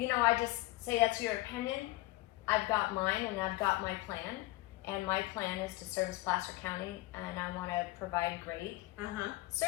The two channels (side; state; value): right; quieter; 19.2 dB